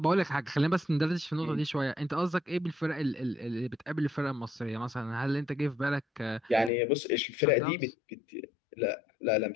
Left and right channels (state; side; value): drops out; right; at 6.7 s